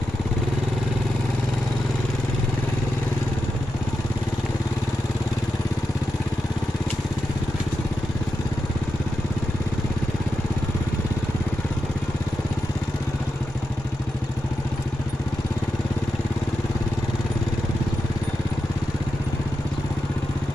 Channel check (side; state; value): both; normal; correlation 0.88